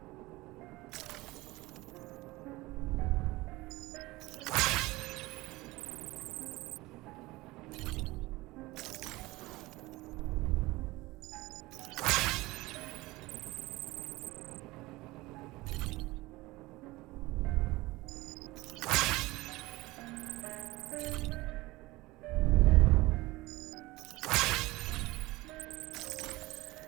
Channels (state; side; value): quieter; left; 20.4 dB